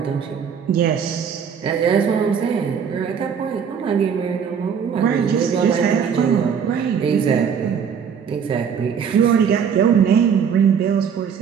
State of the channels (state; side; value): quieter; left; 7.2 dB